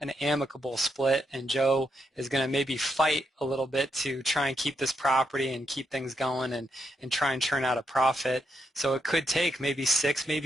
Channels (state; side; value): normal; both; correlation 0.80